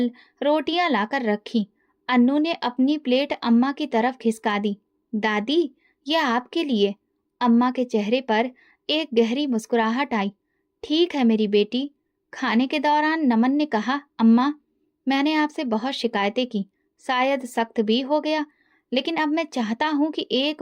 रोटियां लाकर रखी। अन्नू ने अपनी प्लेट अम्मा की तरफ खिसका दी। दादी, यह आपके लिए। अम्मा के चेहरे पर एक गहरी मुस्कुराहट आई। ठीक है मेरी बेटी। खाने के दौरान नमन ने कहा, अम्मा, मैंने आपसे बहुत शिकायतें की, शायद सख्त भी हो गया, लेकिन अब मैं चाहता हूँ कि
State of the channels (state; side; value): identical; both; correlation 1.00